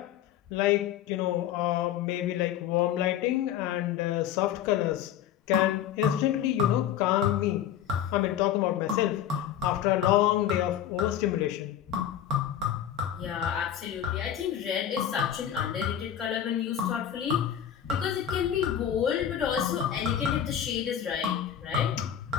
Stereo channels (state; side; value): quieter; right; 10.1 dB